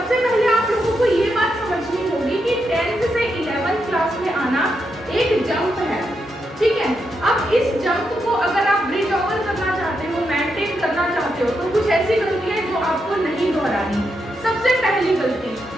पहले आप लोगों को ये बात समझनी होगी कि 10th से 11th क्लास में आना एक जंप है, ठीक है। अब इस जंप को अगर आप ब्रिज ओवर करना चाहते हो, मेंटेन करना चाहते हो, तो कुछ ऐसी गलतियां हैं जो आपको नहीं दोहरानी। सबसे पहली गलती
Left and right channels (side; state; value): both; normal; correlation 0.83